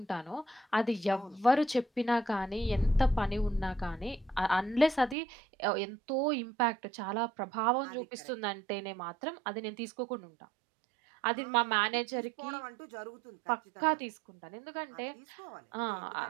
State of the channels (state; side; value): drops out; left; at 5.2 s